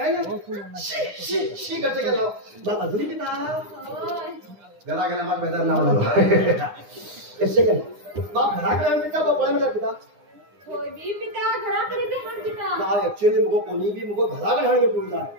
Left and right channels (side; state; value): left; late; 9.8 ms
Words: शी करते गेला बाबा अजून किती घरा गेला मग बेजार नाव लावला कसे काय बाप घराकडे पिता बाप पळ्या पिता होय बी पिता घराकडे ते हाण पिता ना ऍक्च्युअली मुगो कोणी बी मुगो घराकडे हाण घेऊन जा